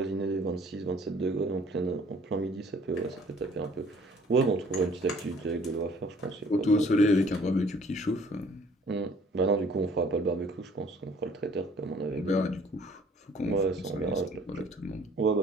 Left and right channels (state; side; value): normal; both; correlation 0.56